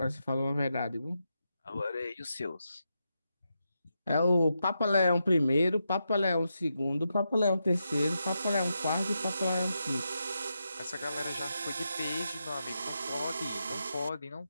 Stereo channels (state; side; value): inverted; both; correlation -0.86